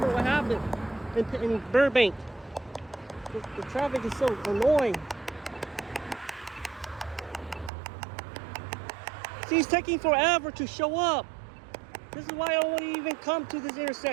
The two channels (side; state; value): left; drops out; at 7.7 s